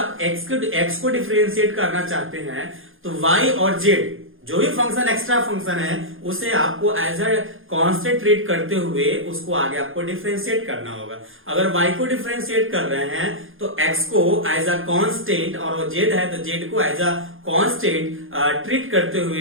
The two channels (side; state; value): left; late; 0.59 ms